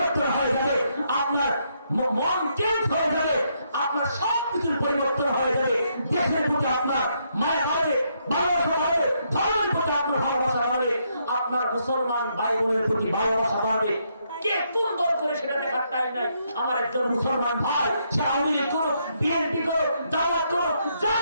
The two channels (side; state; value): both; inverted; correlation -0.76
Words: হয়ে যাবে, আপনার মন চেঞ্জ হয়ে যাবে, আপনার সব কিছুর পরিবর্তন হয়ে যাবে। দেশের প্রতি আপনার মায়া বাড়বে, ভালোবাসা বাড়বে, ধর্মের প্রতি আপনার ভালোবাসা বাড়বে, আপনার মুসলমান ভাই বোনের প্রতি ভালোবাসা বাড়বে। কে কোন দল করে সেটা দেখার টাইম নাই। আমার একজন মুসলমান ভাই, সে আওয়ামী লীগ করো, বিএনপি করো, জামাত করো,